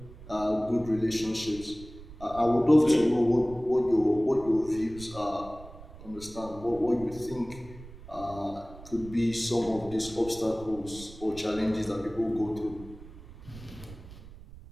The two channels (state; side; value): noise; right; rumble, 17 dB below the sound